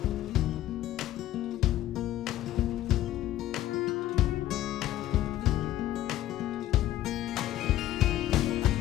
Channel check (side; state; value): right; quieter; 13.7 dB